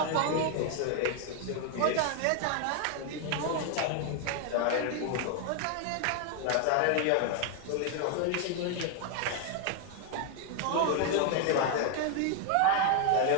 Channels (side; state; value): both; different; correlation 0.00